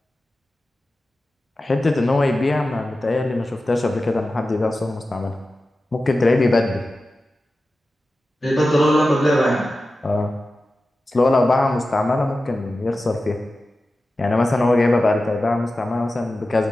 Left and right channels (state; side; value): normal; both; correlation 0.94